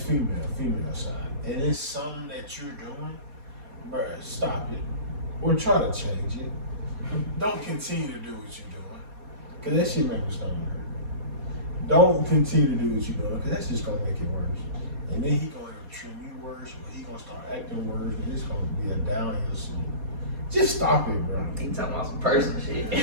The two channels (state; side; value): late; left; 4.2 ms